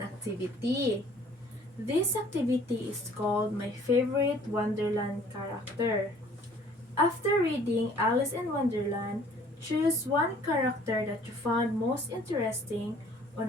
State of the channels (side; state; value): both; normal; correlation 0.55